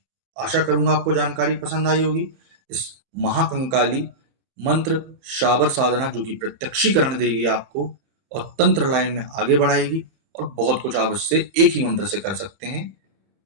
आशा करूंगा आपको जानकारी पसंद आई होगी। इस महाकंकाली मंत्र शाबर साधना जो कि प्रत्यक्षीकरण देगी आपको और तंत्र लाइन में आगे बढ़ाएगी, और बहुत कुछ आप इससे एक ही मंत्र से कर सकते हैं।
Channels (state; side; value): late; left; 30 ms